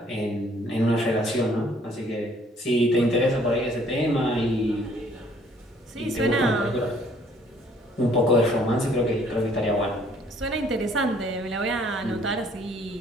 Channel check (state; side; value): normal; both; correlation 0.60